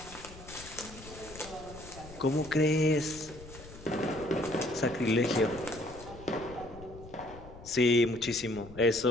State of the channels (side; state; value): left; noise; rumble, 17 dB below the sound